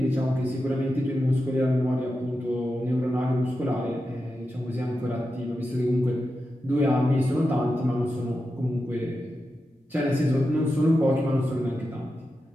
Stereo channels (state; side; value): normal; both; correlation 0.90